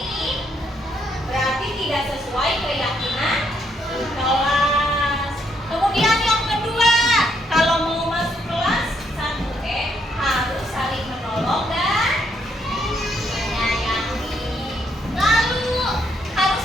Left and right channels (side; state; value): both; normal; correlation 0.74